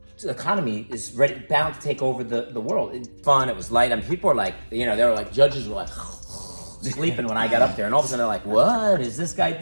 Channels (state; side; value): inverted; both; correlation -1.00